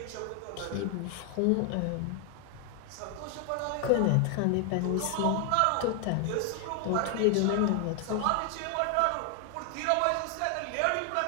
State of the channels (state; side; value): different; both; correlation 0.00